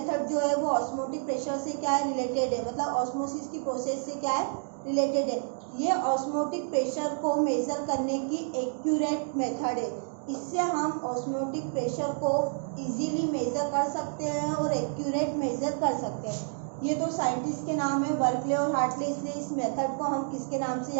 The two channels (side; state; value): left; silent; 58 dB below the other